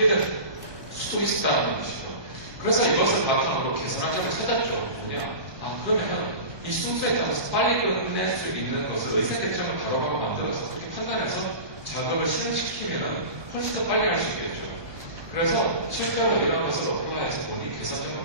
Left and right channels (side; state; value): left; late; 1.2 ms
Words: 될 수도 있다는 것이죠. 그래서 이것을 바탕으로 개선할 점을 찾았죠. 뭐냐? 그러면 이 순서에 따라서 빨리 끝낼 수 있는 것을 의사결정을 바로바로 만들어서 그렇게 판단해서 작업을 실행시키면 훨씬 더 빨리 할 수 있겠죠. 그래서 실제로 이런 것을 어플라이해서 보니